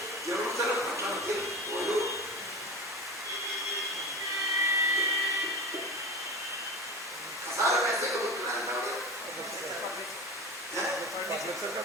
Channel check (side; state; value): both; normal; correlation 0.30